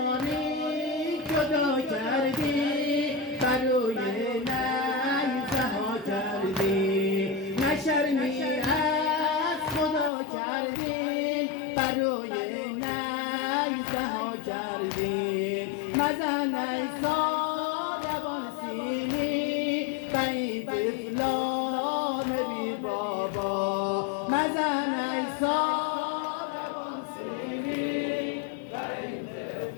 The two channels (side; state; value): right; drops out; at 10.1 s